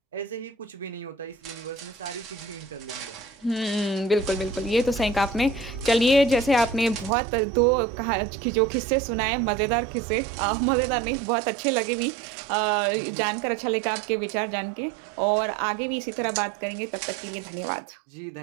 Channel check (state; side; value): drops out; left; at 7.1 s